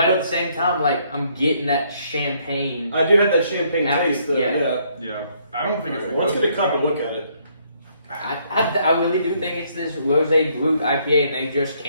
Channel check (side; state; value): both; inverted; correlation -0.68